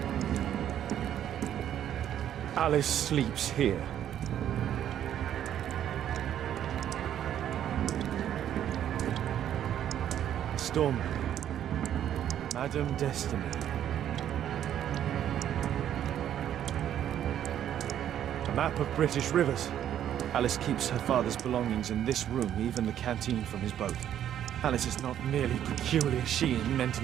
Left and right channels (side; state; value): left; quieter; 10.5 dB